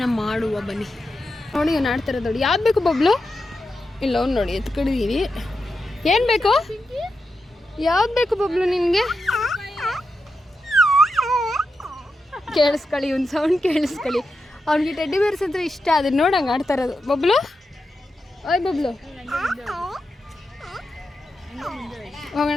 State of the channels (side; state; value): both; normal; correlation 0.88